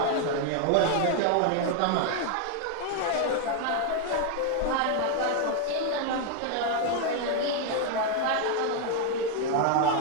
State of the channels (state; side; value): different; both; correlation 0.01